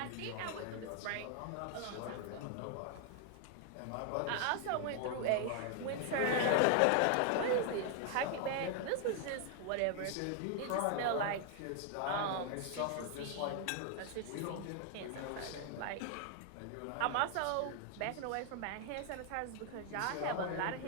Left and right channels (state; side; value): different; both; correlation 0.00